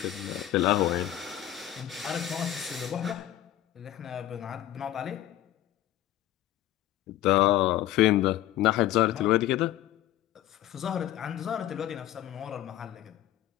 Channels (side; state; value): right; quieter; 13.3 dB